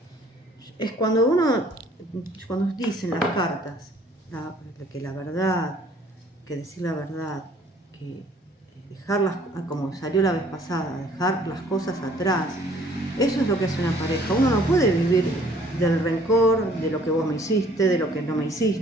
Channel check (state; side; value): normal; both; correlation 0.58